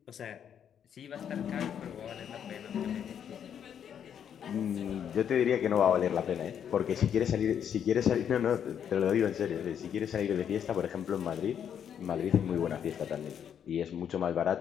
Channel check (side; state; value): right; quieter; 8.6 dB